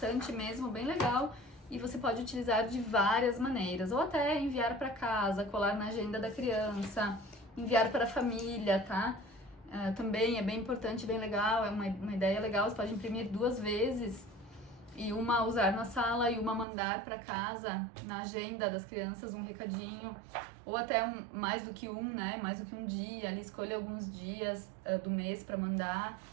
mesmo, bem legal, e você pode utilizar de várias maneiras, ou até enviar para casa, colar na agenda da criança, enviar para a família, tá? Também é bem importante, bem legal, é uma ideia legal, você pode imprimir 2 vezes, e uma usar na sala e uma mandar para casa, na agenda das crianças, um recadinho, ou até mais do que né? Mais do que um dia, ali escolha alguns dias do mês para mandar,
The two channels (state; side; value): drops out; left; at 16.7 s